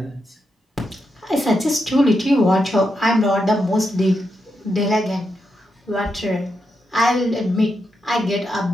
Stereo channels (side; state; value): both; normal; correlation 0.84